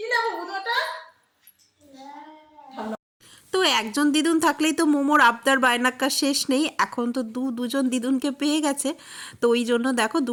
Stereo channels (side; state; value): both; identical; correlation 1.00